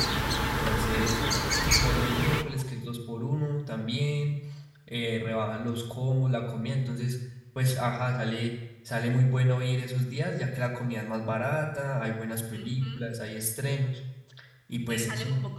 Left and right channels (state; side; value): identical; both; correlation 1.00